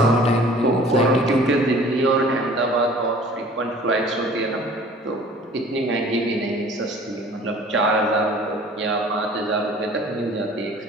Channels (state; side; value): normal; both; correlation 0.49